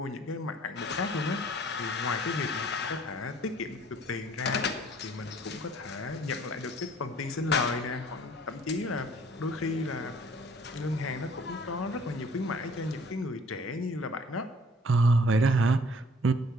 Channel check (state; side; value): normal; both; correlation 0.54